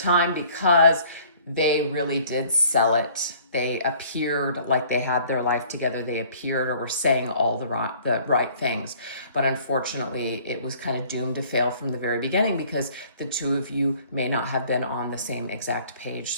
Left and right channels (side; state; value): both; inverted; correlation -0.55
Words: because they really did sell it. They appeared like they had their life together. They appeared or were saying all the right things. But unfortunately, it was kind of doomed to fail from the very beginning because the two of you may not have been on the same exact page.